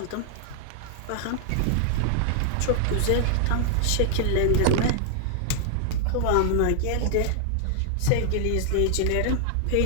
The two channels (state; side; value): different; both; correlation 0.00